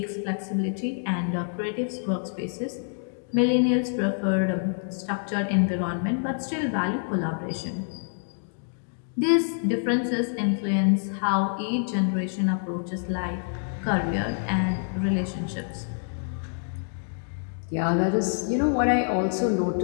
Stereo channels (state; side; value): silent; right; digital silence